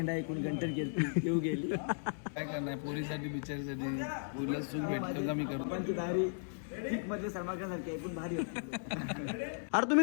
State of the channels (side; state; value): right; silent; digital silence